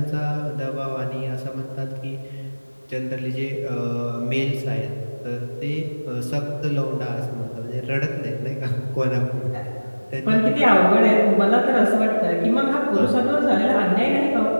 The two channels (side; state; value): both; inverted; correlation -1.00